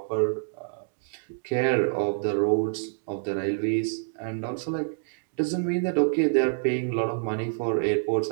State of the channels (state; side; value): silent; left; 60 dB below the other